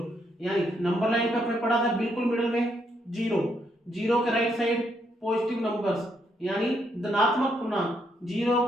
यानी नंबर लाइन पे अपने पढ़ा था बिल्कुल मिडिल में जीरो, जीरो के राइट साइड पॉजिटिव नंबर्स यानी धनात्मक पूर्णांक, जीरो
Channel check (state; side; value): normal; both; correlation 0.75